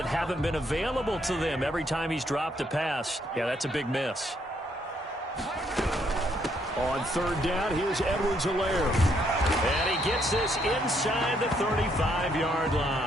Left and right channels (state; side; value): normal; both; correlation 0.71